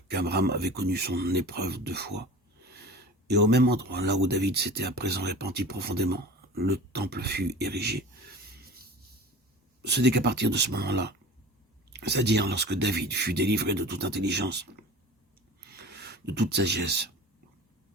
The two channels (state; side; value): normal; both; correlation 0.38